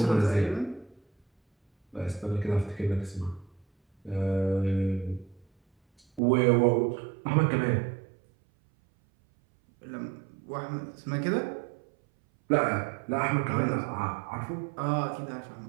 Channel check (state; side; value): drops out; left; at 6.2 s